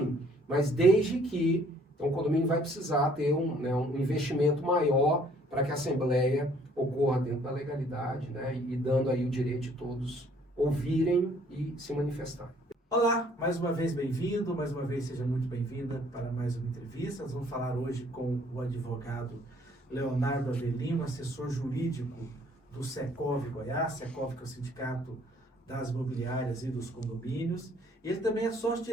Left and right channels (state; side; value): normal; both; correlation 0.60